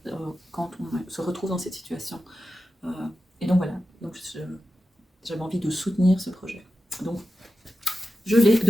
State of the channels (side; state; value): both; normal; correlation 0.92